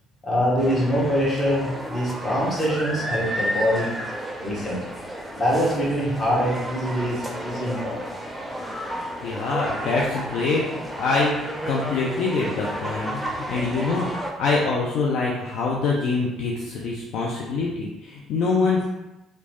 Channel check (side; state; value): both; normal; correlation 0.64